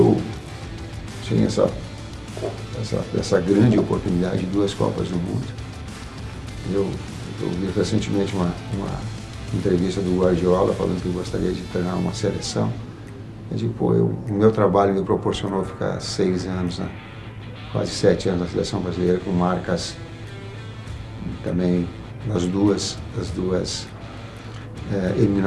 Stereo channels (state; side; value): identical; both; correlation 1.00